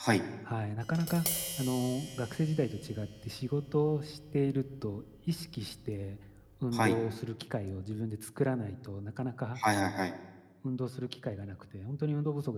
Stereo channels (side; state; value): both; identical; correlation 1.00